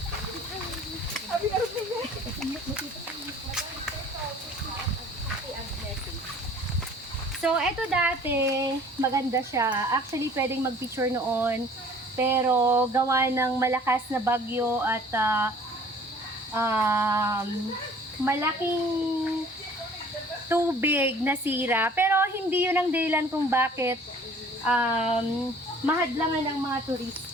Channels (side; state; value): both; normal; correlation 0.51